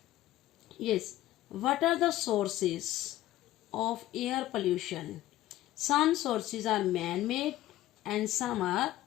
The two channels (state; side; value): quieter; right; 15.0 dB